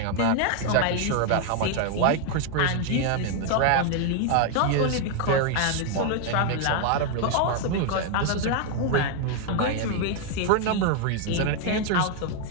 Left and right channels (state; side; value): different; both; correlation 0.01